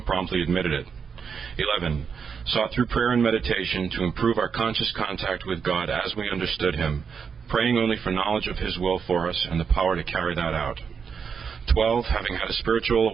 promptly admitted it. 11. Sought through prayer and meditation to improve our conscious contact with God as we understood Him, praying only for knowledge of His will for us and the power to carry that out. 12. Having had a spiritual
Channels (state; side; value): quieter; left; 6.3 dB